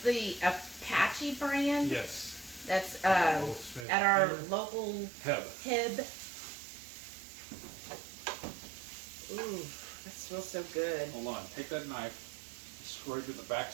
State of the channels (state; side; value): drops out; left; at 3.9 s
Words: the Apache brand. Yes. That's at our local Heb. Ooh, that smells so good. Hold on. Take that knife. Scrape at the back